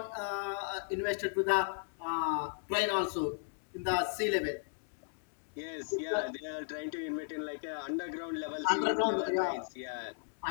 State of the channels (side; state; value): right; silent; digital silence